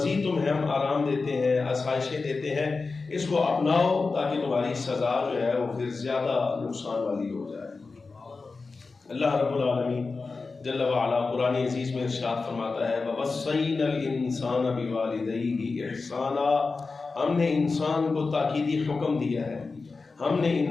تمہیں ہم آرام دیتے ہیں, آسائشیں دیتے ہیں, اس کو اپناؤ تاکہ تمہاری سزا جو ہے وہ پھر زیادہ نقصان والی ہو جائے. اللہ رب العالمین جل وعلا قرآن عزیز میں ارشاد فرماتا ہے وَوَصَّيْنَا الْإِنسَانَ بِوَالِدَيْهِ إِحْسَانًا. ہم نے انسان کو تاکیدی حکم دیا ہے, ہم نے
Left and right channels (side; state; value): right; quieter; 4.1 dB